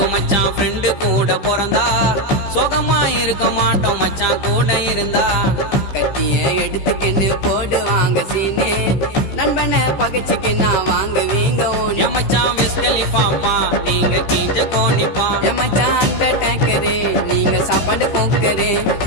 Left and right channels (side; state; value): right; late; 15 ms